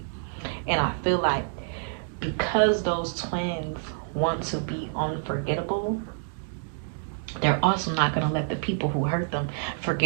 And I feel like because those twins want to be unforgettable, they're also not gonna let the people who hurt them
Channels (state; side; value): silent; left; digital silence